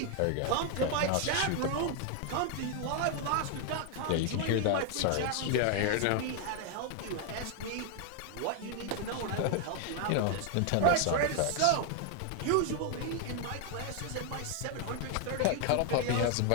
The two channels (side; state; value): both; different; correlation 0.00